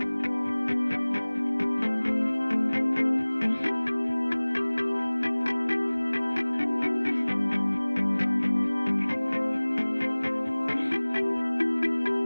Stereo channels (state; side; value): inverted; both; correlation -1.00